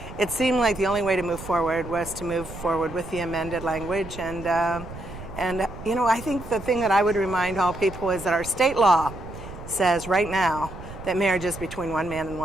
it seemed like the only way to move forward was to move forward with the amended language. And you know, I think the thing that I would remind all people is that our state law says right now that marriage is between one man and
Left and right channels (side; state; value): right; noise; rumble, 13 dB below the sound